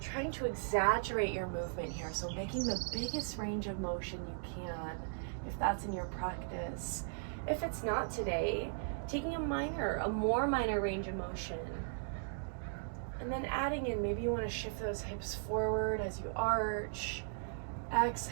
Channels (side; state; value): left; silent; digital silence